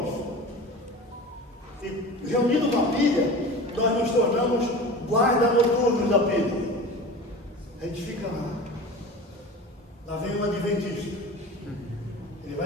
E reunindo uma pilha, nós nos tornamos guarda noturnos da pilha. A gente fica lá. Lá vem um adventista. Ele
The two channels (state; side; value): normal; both; correlation 0.35